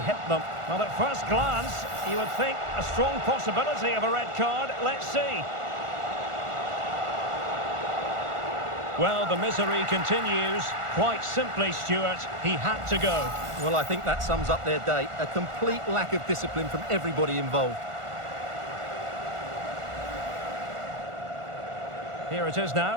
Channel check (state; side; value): late; left; 1.4 ms